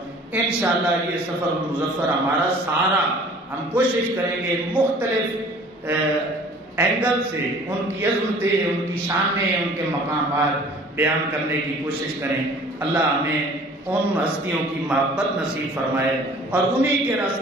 انشاءاللہ یہ سفر مظفر ہمارا سارا ہم کوشش کریں گے مختلف اینگل سے ان کی عظمتیں، ان کی شانیں، ان کے مقامات بیان کرنے کی کوشش کریں. اللہ ہمیں ان ہستیوں کی محبت نصیب فرمائے اور انہی کے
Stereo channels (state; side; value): normal; both; correlation 0.49